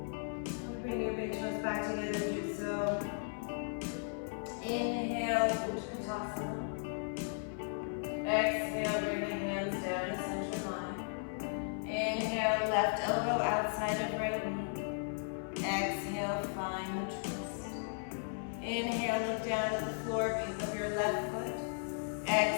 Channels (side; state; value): right; silent; 54 dB below the other